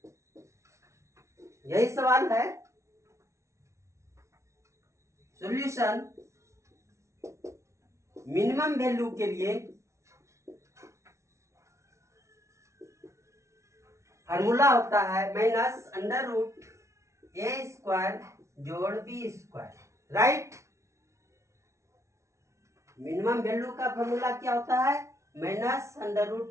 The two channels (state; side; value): late; left; 0.14 ms